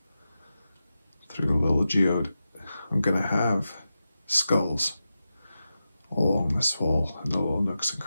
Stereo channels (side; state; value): both; inverted; correlation -0.91